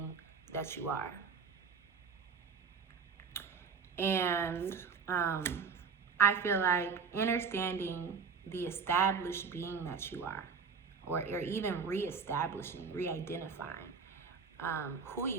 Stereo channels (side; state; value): left; quieter; 5.6 dB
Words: that you are. And I feel like understanding the established being that you are, or even reestablishing, re-identifying who